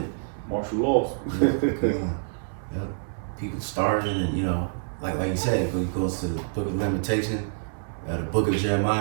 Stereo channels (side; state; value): left; silent; 60 dB below the other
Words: Martial laws. Yep. People starving, and you know, like you said, when it goes to the Book of Lamentation, the Book of